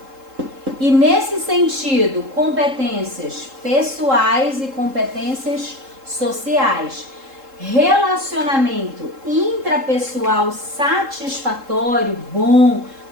E nesse sentido, competências pessoais e competências sociais. Relacionamento intrapessoal satisfatório, bom,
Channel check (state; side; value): late; left; 3.7 ms